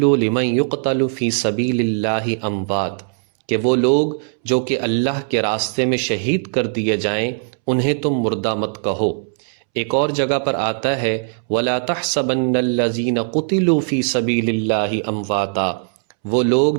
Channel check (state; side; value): silent; left; 66 dB below the other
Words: لمن یقتل فی سبیل اللہ اموات، کہ وہ لوگ جو کہ اللہ کے راستے میں شہید کر دیے جائیں انہیں تم مردہ مت کہو۔ ایک اور جگہ پر آتا ہے ولا تحسبن الذین قتلوا فی سبیل اللہ امواتا، وہ لوگ